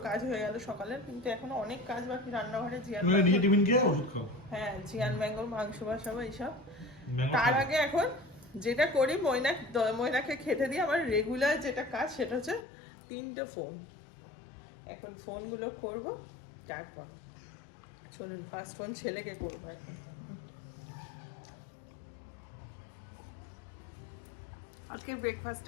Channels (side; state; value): right; drops out; at 12.7 s